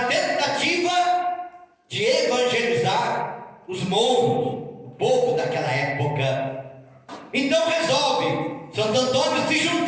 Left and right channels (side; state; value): both; identical; correlation 1.00